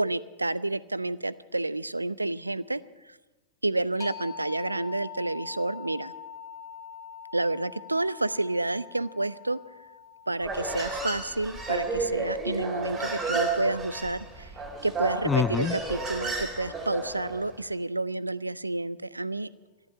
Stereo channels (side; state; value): both; inverted; correlation -0.61